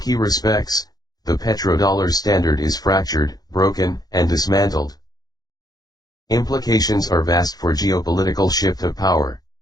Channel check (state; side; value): late; right; 0.19 ms